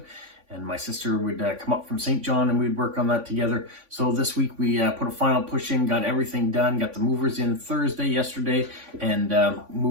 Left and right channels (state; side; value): late; left; 3.5 ms